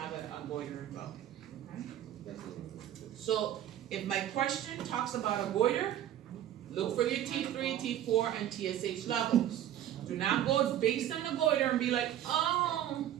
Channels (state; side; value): quieter; left; 11.5 dB